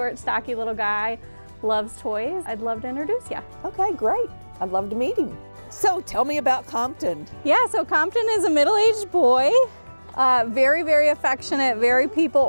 stocky little guy, loves toys. I'd love to introduce you. Okay, great. I'd love to meet him. So tell me about Compton. Yeah, so Compton is a middle-aged boy. Very, very affectionate, very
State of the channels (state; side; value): inverted; both; correlation -1.00